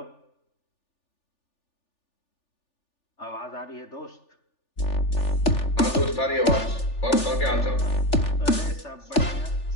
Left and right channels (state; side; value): late; right; 3.4 ms